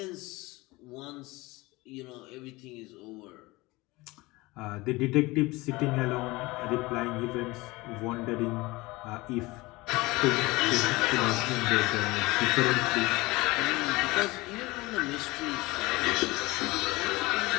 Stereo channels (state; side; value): quieter; right; 21.8 dB